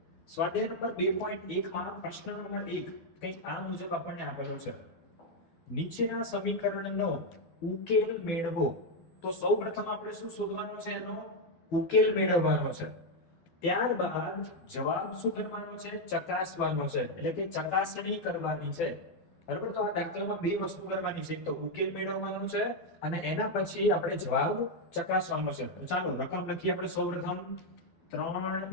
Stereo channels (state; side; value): late; right; 12 ms